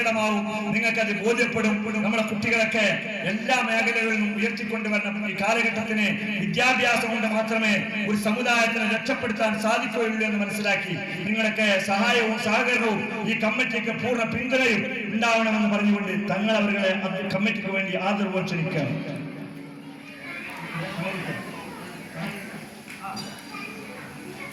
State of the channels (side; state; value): both; identical; correlation 1.00